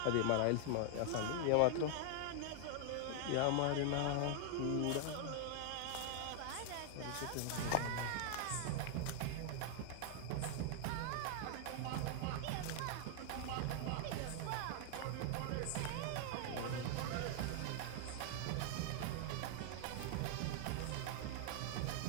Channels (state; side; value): different; both; correlation 0.00